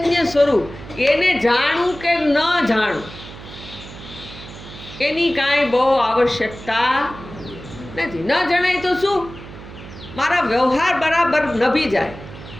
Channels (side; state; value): right; noise; hum, 15 dB below the sound